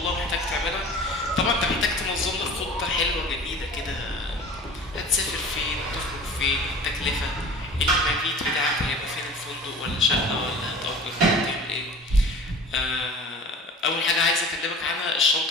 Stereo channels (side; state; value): both; normal; correlation 0.42